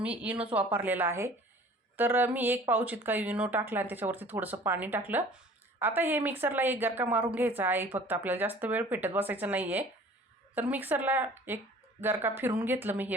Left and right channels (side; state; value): both; normal; correlation 0.48